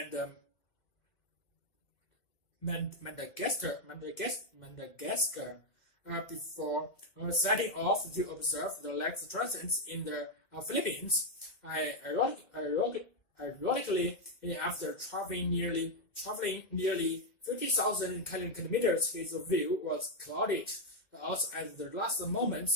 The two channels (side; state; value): right; late; 2.1 ms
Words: Madagascar before setting off to observe the lake's transits in the Philippines. Ironically, after traveling nearly 50,000 kilometers, his view was clouded out at the last